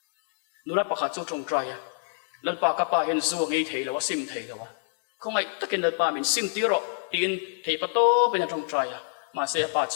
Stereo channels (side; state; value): right; silent; digital silence